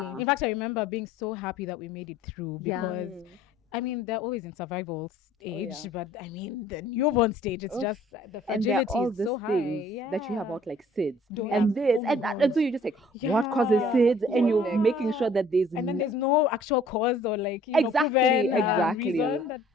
In fact, I remember being so happy that we made it through Yeah. because, I mean, they're always in survival stage, yeah. but I mean, the newborn stage, it's just the And there are fragility all is these so high. things Yeah. that you have about like SIDS Don't- and yeah. this Oh my and that. God. And so you're just like, what causes Yeah. SIDS? And you're Yeah. making sure that there's And then no- there's no actual cause or like Exactly, proven exactly. reason that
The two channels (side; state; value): both; normal; correlation 0.55